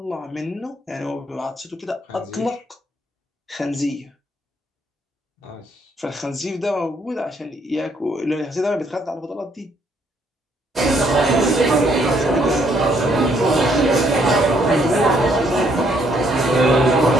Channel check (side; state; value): both; normal; correlation 0.69